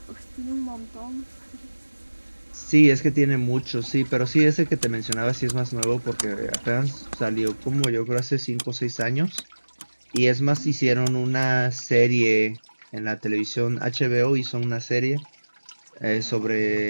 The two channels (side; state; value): both; inverted; correlation -1.00